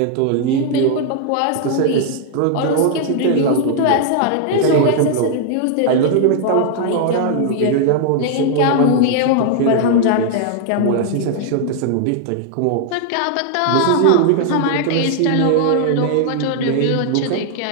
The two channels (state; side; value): different; both; correlation 0.00